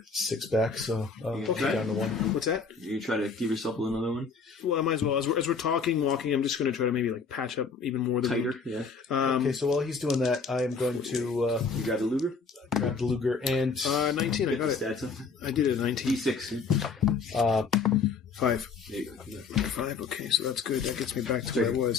6 back, so I'll Okay. get down to 1. What's that? You try to give yourself another one? Well, I might as well. As we're talking, walking, I'm just going to try to maybe patch up even more. Tighter, yeah. Okay, so while he's doing that, I am going to You grab the Luger? grab the Luger and 19. I got it. Stats up. I did it. 19. D6. 5. There you go. 5. Okay, so that's good. That gets me back to where I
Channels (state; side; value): quieter; right; 5.0 dB